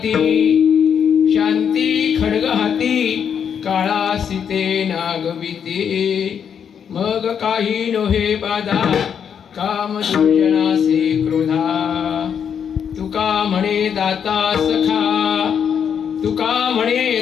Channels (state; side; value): quieter; right; 7.7 dB